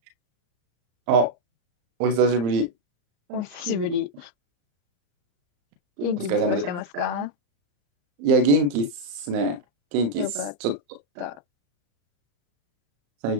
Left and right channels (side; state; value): left; late; 34 ms